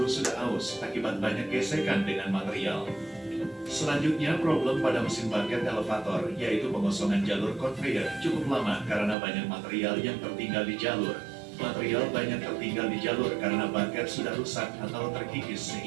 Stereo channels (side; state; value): left; drops out; at 9.2 s